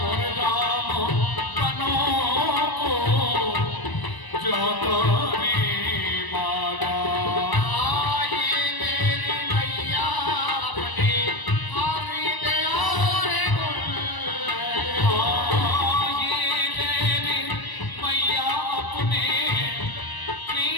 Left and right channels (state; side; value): late; right; 1.0 ms